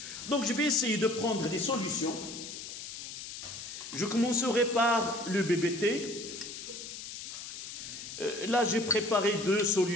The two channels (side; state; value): left; noise; hiss, 10 dB below the sound